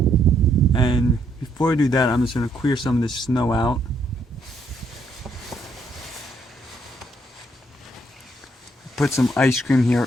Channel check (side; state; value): both; normal; correlation 0.72